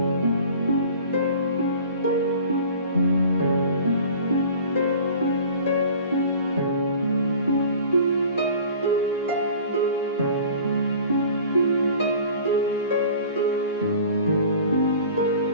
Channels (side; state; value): both; inverted; correlation -0.45